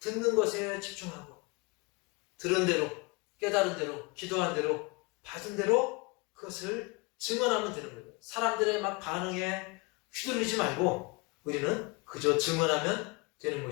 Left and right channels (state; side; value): quieter; right; 27.6 dB